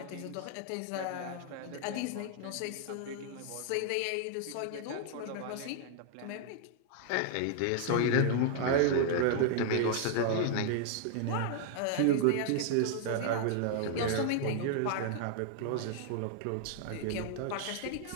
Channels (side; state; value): both; different; correlation 0.00